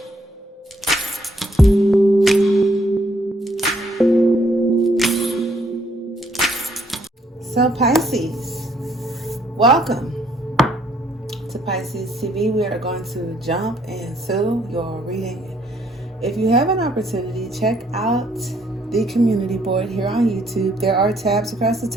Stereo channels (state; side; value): normal; both; correlation 0.68